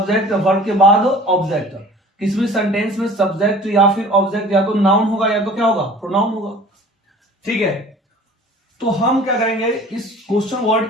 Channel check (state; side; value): normal; both; correlation 0.46